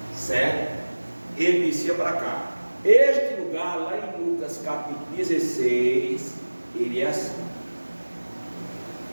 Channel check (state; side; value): inverted; both; correlation -1.00